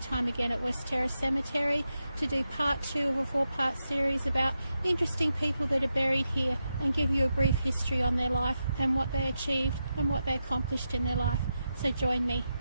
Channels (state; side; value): inverted; both; correlation -0.87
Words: again at West Terrace Cemetery to do part 2 of a 4-part series about interesting people that are buried here and give you a brief history on their life and what they achieved and what they accomplished in their life. So join me.